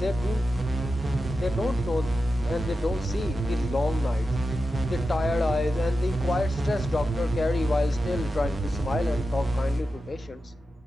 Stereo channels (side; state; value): both; normal; correlation 0.91